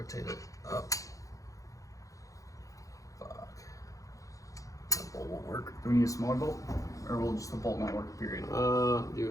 it up. Fuck. That bolt won't work. Do we need a smaller bolt? Or will just the bolt not work, period? Do a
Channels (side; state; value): right; late; 0.16 ms